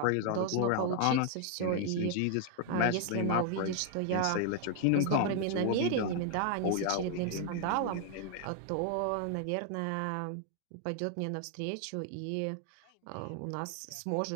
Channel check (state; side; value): different; both; correlation 0.00